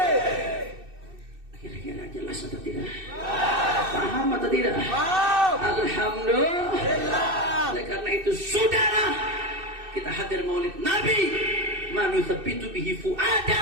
Kira-kira jelas atau tidak? Paham atau tidak? Alhamdulillah. Oleh karena itu, saudara, kita hadir maulid Nabi, manuthabitu bihi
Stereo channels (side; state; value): left; late; 2.6 ms